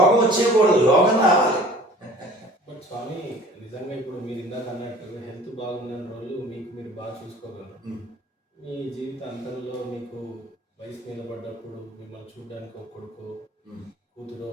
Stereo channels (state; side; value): normal; both; correlation 0.47